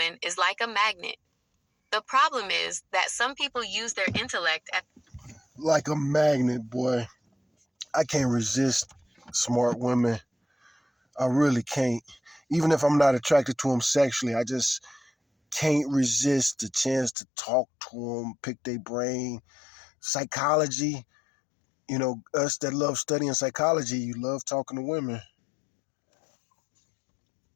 is like a magnet. The problem is that some people use their intellect as like a magnet, boy. I can't resist smart women. I really can't. Even if I'm not attracted to them sexually, I just can't resist the chance to talk to them, pick their brain. Psychology, us that love studying psychology, you love talking to women,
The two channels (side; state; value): right; drops out; at 17.2 s